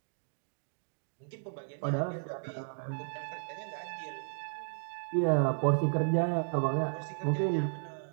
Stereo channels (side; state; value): left; silent; digital silence